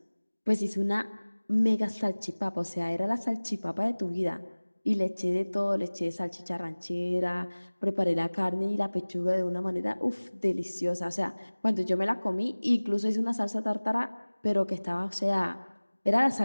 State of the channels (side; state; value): both; inverted; correlation -1.00